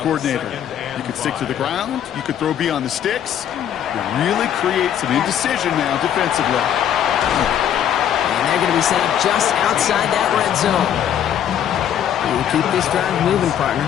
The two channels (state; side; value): quieter; right; 9.8 dB